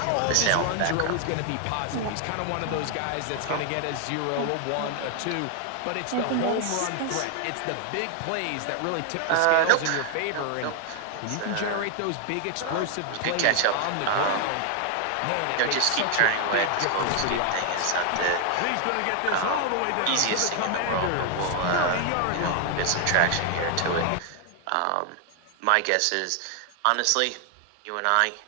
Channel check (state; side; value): different; both; correlation 0.00